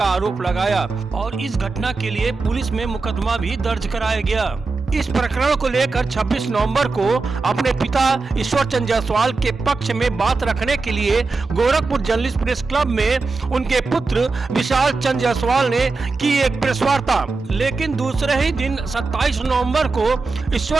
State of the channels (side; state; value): left; quieter; 4.0 dB